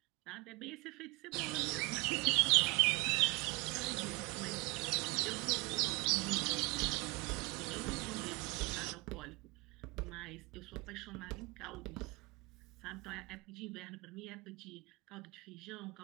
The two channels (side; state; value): left; quieter; 26.7 dB